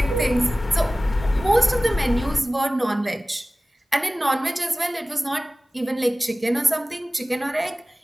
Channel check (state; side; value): normal; both; correlation 0.97